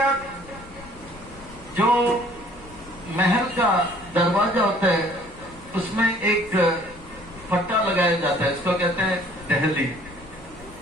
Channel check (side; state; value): left; noise; rumble, 20 dB below the sound